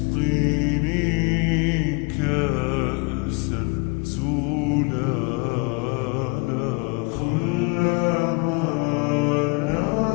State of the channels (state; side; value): quieter; right; 29.7 dB